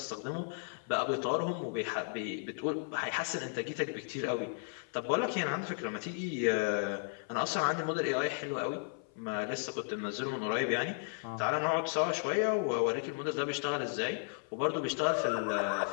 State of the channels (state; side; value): silent; right; 55 dB below the other